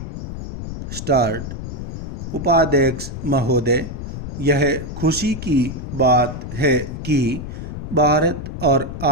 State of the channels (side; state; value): left; noise; rumble, 7 dB below the sound